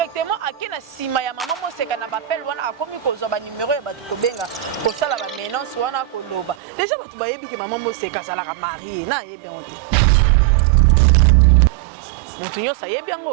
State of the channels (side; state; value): left; drops out; at 6.6 s